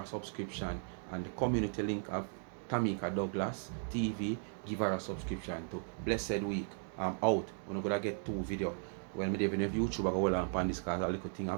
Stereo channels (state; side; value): silent; left; 53 dB below the other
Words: subscription. And the community link of Tamika Douglas TV. Give her a subscription to. Blessed week. I'm out. We're gonna get 2 videos. Well, me even if YouTube I go hold on this because a little thing